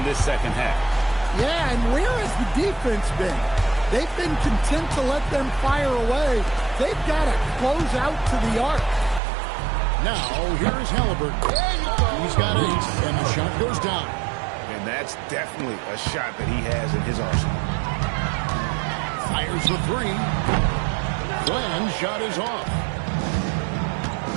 this second half. Yeah, and where has the defense been? They've been content to let them fire away. They've got to close out to the arc. Now, here's Halliburton. He's got 8, and the shot goes down. And that's definitely a shot that he has in his arsenal. Fires the 3. Fland's shot is off.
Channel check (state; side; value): drops out; left; at 9.2 s